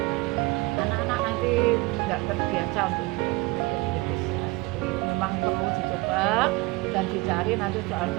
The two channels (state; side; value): quieter; left; 23.0 dB